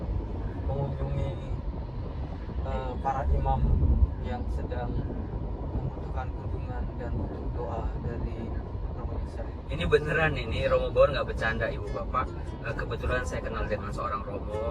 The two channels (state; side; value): identical; both; correlation 1.00